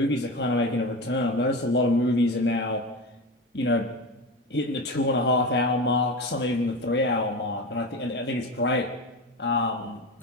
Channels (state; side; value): normal; both; correlation 0.23